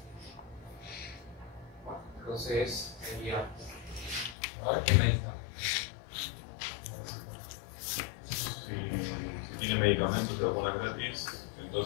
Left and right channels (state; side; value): drops out; right; at 4.4 s